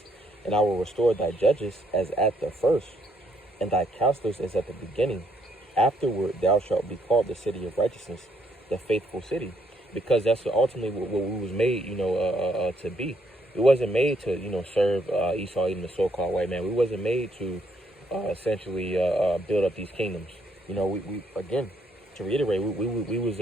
"And I will restore thy judges as at the first, and thy counselors as at the beginning. Afterward thou shalt be called the city of righteousness, the faithful city." Because that's ultimately what we was made, you know, to be. We wasn't made to, you know, serve Esau, even the so-called white man. We wasn't made to essentially build up these kingdoms. You know, we again, to reiterate, we was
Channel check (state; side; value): normal; both; correlation 0.72